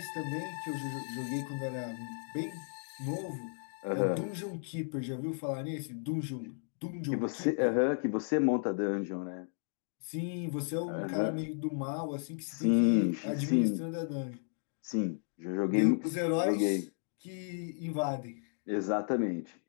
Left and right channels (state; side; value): silent; right; digital silence